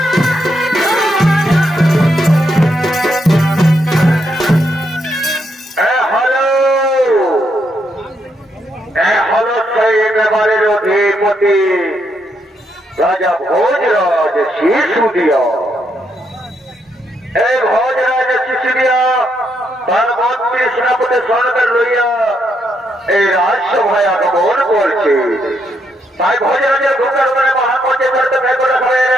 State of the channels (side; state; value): both; normal; correlation 0.77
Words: राजा भोजराज सिसोदिया। भोजराज सिसोदिया तार मंत्री सेनापति सঙ্গে লইয়া এই রাজসভায় আগমন করছে। তাই ভোজরাজের ঢোকার পরে মহামন্ত্রী করতে বের করে হবে